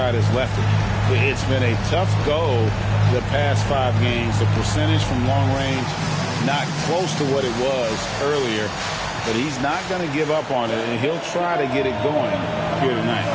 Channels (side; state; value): both; identical; correlation 1.00